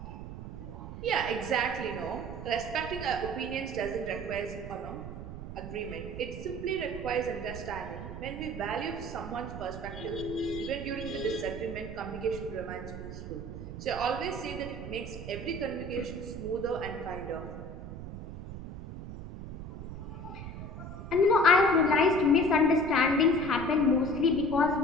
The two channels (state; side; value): noise; right; rumble, 9 dB below the sound